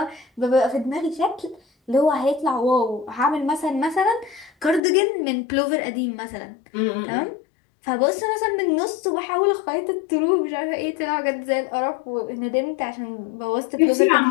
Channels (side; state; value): right; drops out; at 4.8 s